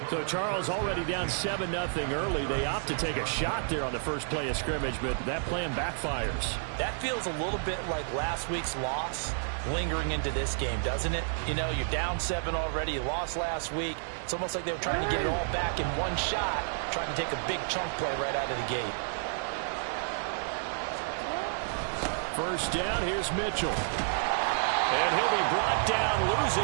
So Charles already down 7-0 early. They opt to take a shot there on the first play of scrimmage, but that plan backfires. That feels a little bit like last week's loss lingering into this game, doesn't it? You know, you're down 7 already. You lost last week. It's almost like they were trying to get it all back in one shot, trying to take a big chunk play right out of the gate. First down, here's Mitchell. And he'll be brought down,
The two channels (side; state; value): left; silent; digital silence